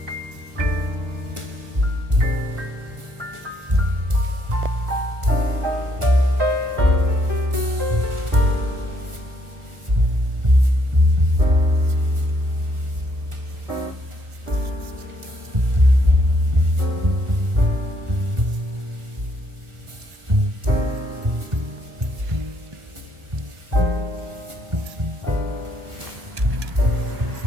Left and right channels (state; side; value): late; left; 1.4 ms